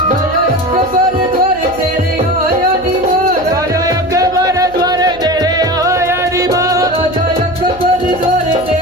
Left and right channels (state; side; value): noise; right; hum, 20 dB below the sound